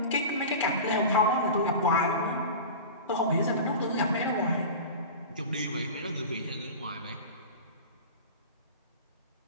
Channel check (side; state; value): both; inverted; correlation -0.32